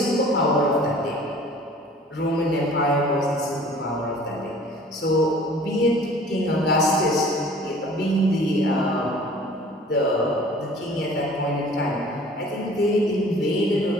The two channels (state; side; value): normal; both; correlation 0.49